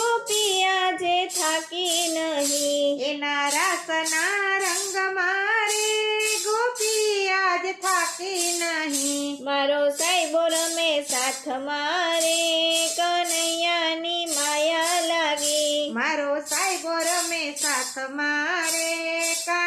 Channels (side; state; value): both; identical; correlation 1.00